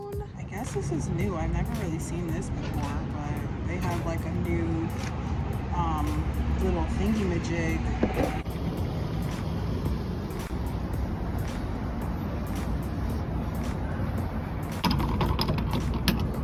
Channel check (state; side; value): identical; both; correlation 1.00